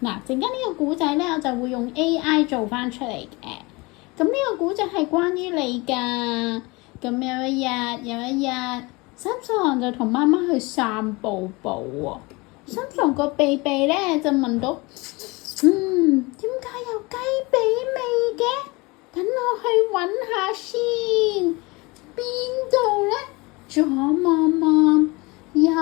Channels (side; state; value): right; quieter; 25.0 dB